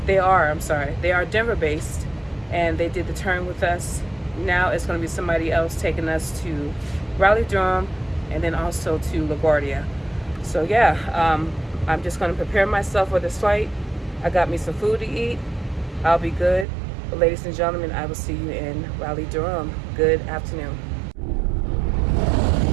Denver based, and they did the turn with us. Now it's going to be somebody else taking us to Raleigh, Durham, and then also to LaGuardia. So yeah, I'm just going to prepare myself for this flight. I got me some food to eat. I'll be good. But ladies and gentlemen, I will see you in Raleigh, Durham. Good afternoon.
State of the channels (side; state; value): left; drops out; at 16.7 s